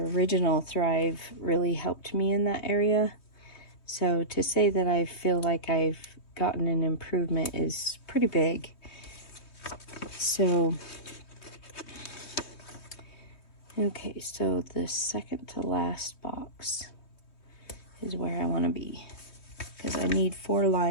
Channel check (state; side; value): late; right; 3.2 ms